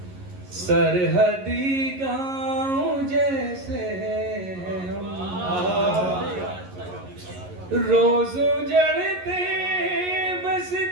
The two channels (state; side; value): late; left; 11 ms